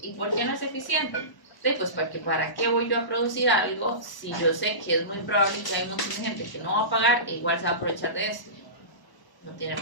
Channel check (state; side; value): late; right; 1.0 ms